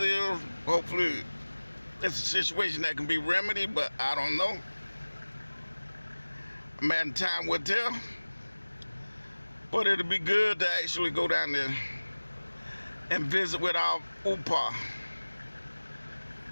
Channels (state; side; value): inverted; both; correlation -1.00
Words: Hopefully, it's a situation that can be remedied, but I don't know. Man, time will tell. But it'll be good to actually go down there and visit with our UPA